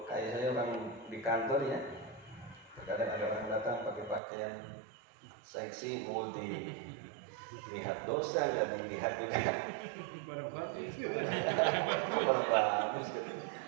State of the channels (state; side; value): drops out; left; at 4.2 s